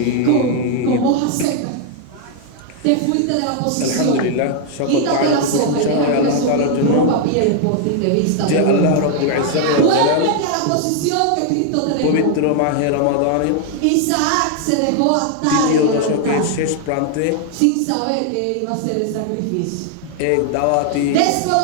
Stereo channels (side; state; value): both; different; correlation 0.00